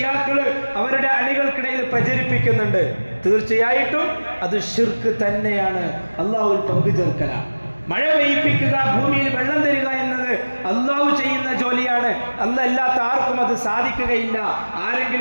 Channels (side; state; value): both; inverted; correlation -1.00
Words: അവരുടെ അണികൾക്കിടയിൽ പ്രചരിപ്പിക്കുന്നുണ്ട്. തീർച്ചയായിട്ടും അത് ശിർക്ക് തന്നെയാണ്. അള്ളാഹുവിൽ പങ്കു ചേർക്കലാണ്. മഴ പെയ്യിപ്പിക്കുക, ഭൂമിയിൽ വെള്ളം തരിക എന്നത് അള്ളാഹു ചെയ്യുന്ന ജോലിയാണ്. അല്ലാത്ത ആർക്കും അത് സാധിക്കുകയില്ല.